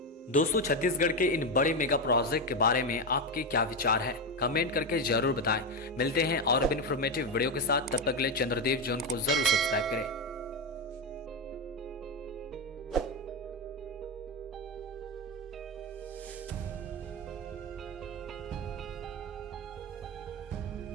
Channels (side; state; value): both; normal; correlation 0.11